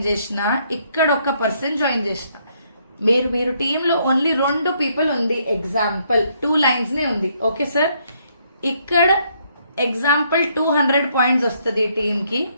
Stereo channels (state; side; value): inverted; both; correlation -0.71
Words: చేసిన, ఇక్కడ ఒక్క పర్సన్ జాయిన్ చేసిన, మీరు టీంలో ఓన్లీ 2 పీపుల్ ఉంది, ఎగ్జాంపుల్ 2 లైన్స్ నే ఉంది, ఓకే సార్. ఇక్కడ ఎగ్జాంపుల్ 200 పాయింట్స్ వస్తుంది టీమ్ కి,